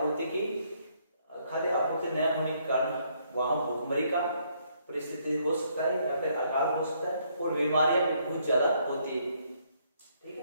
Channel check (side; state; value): both; inverted; correlation -0.70